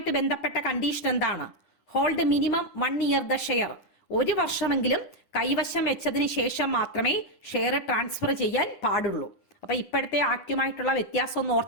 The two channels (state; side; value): late; right; 10 ms